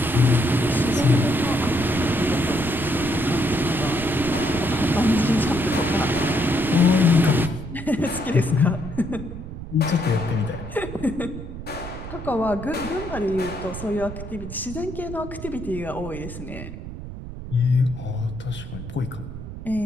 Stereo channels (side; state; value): right; noise; rumble, 10 dB below the sound